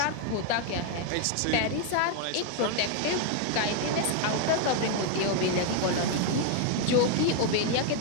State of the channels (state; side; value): different; both; correlation 0.00